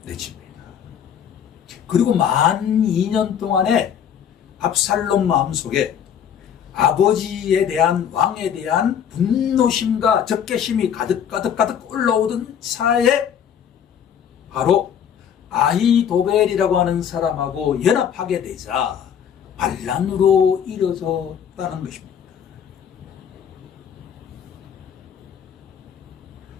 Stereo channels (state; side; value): quieter; right; 8.5 dB